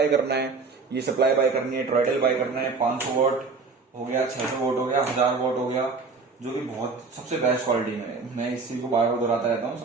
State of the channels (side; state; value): left; quieter; 4.4 dB